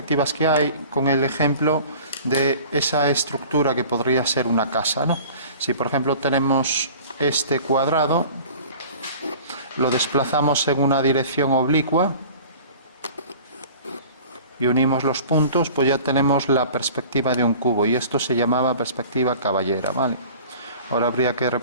que hay con el ejemplo de esa estructura que podría ser una casa, ¿no? Si, por ejemplo, tenemos este cuadrado, lo desplazamos en una dirección oblicua y unimos los puntos, pues ya tenemos la perspectiva de un cubo, y esto se llamaba perspectiva caballera, ¿vale? Ahora habría que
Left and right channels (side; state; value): both; inverted; correlation -0.44